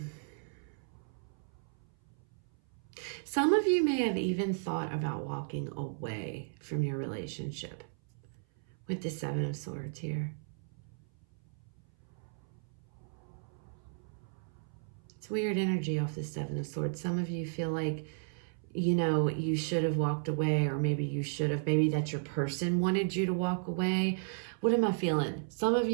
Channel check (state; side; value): silent; left; 55 dB below the other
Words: some of you may have even thought about walking away from your relationship with the 7 of Swords here. It's weird energy off the 7 of Swords. Some of you feel like, you know, you should have walked away, or maybe you should have, maybe that your person wanted you to walk away. What am I feeling? Some of